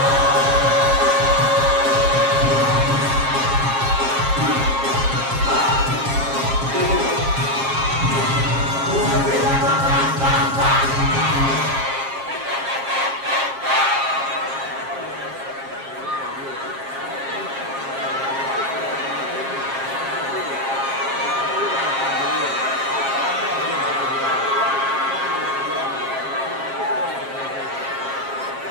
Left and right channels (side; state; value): left; late; 7.4 ms